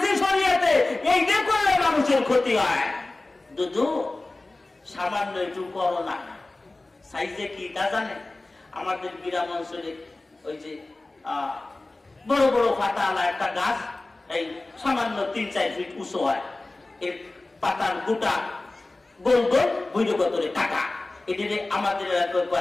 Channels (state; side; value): quieter; right; 3.0 dB